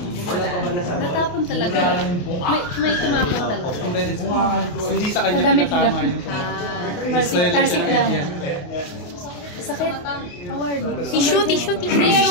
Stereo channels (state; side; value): late; right; 28 ms